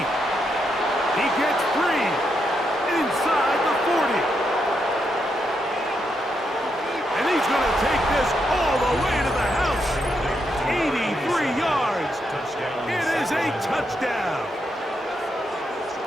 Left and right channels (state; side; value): normal; both; correlation 0.81